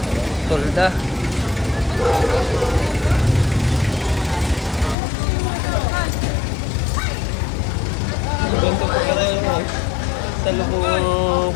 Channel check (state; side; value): drops out; right; at 5.0 s